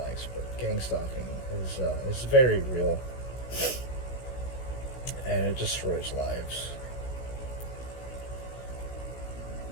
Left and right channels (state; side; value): late; right; 16 ms